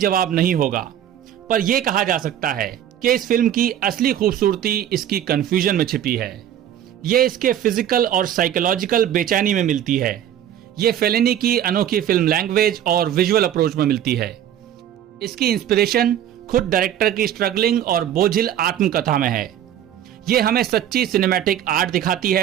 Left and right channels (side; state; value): left; quieter; 10.6 dB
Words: नहीं होगा, पर यह कहा जा सकता है कि इस फिल्म की असली खूबसूरती इसकी कंफ्यूजन में छिपी है। ये इसके फिजिकल और साइकोलॉजिकल बेचैनी में मिलती है। ये फेलिनी की अनोखी फिल्म लैंग्वेज और विजुअल अप्रोच में मिलती है। इसकी इंस्पिरेशन खुद डायरेक्टर की स्ट्रगलिंग और बोझिल आत्मकथा में है। ये हमें सच्ची सिनेमैटिक आर्ट दिखाती